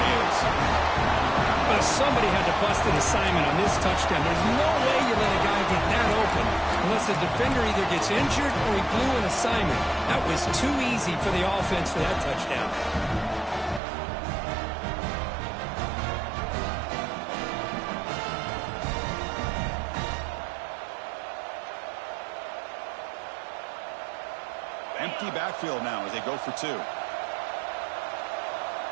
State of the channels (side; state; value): left; drops out; at 13.8 s